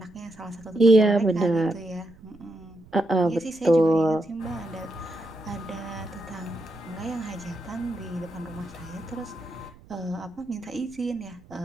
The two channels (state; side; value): noise; right; rumble, 23 dB below the sound